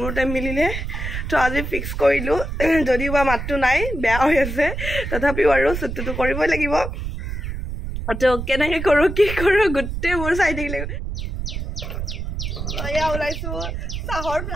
টাইম মিলিলে তো আজি ফিক্স কৰিলো যদিও বা মাতটো নাই বেয়া হৈ আছে তথাপিও আৰু শুটটো কৰিবই লাগিব তো কেনেকৈ কৰো কি কৰো গুটে মোৰ চাই থাকিলে আয়া ওলাইছো চাহৰ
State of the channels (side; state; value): right; noise; rumble, 5 dB below the sound